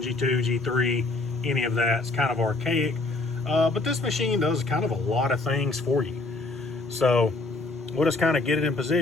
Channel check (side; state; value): right; quieter; 3.2 dB